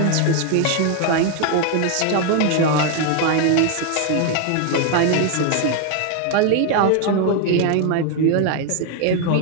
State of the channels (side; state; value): both; different; correlation 0.00